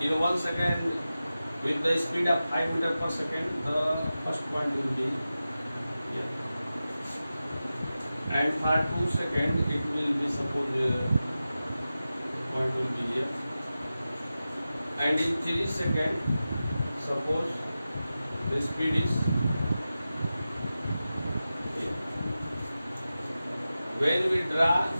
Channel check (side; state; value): both; inverted; correlation -0.94